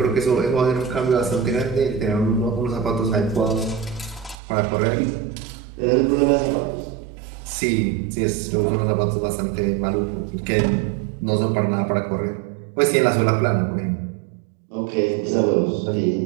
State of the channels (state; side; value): drops out; left; at 4.4 s